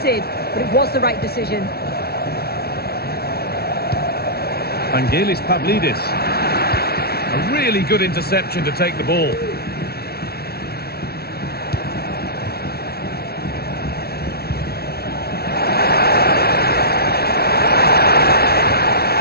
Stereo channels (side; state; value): right; late; 0.45 ms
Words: but it was the right decision. Vangelis Pavlidis. A really good interception to take the ball.